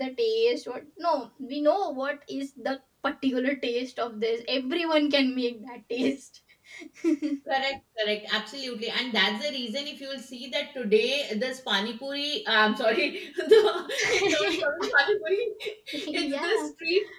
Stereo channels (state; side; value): identical; both; correlation 1.00